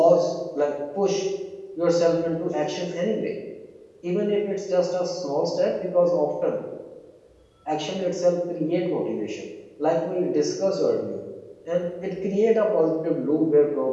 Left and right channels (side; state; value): both; identical; correlation 1.00